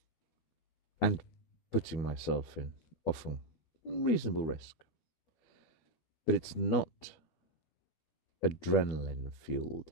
And putting myself in often reasonable risk. But it's not adrenaline-fueled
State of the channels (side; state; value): right; late; 13 ms